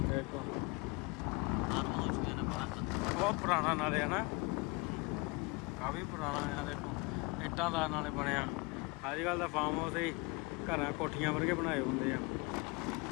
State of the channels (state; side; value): quieter; right; 26.9 dB